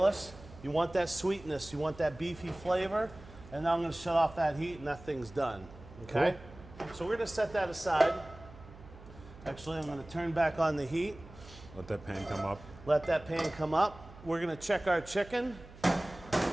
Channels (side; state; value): right; noise; hum, 19 dB below the sound